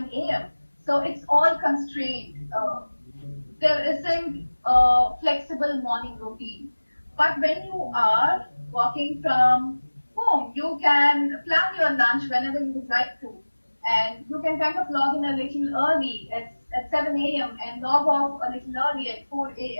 a.m. So it's all constrained. There isn't a flexible morning routine. But when you are working from home, you can plan your lunch whenever you would like to. And you can kind of log in a little early at 7 a.m. and log off a little early at 4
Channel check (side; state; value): both; inverted; correlation -1.00